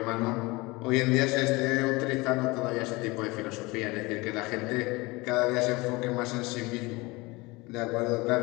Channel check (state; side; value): quieter; right; 23.5 dB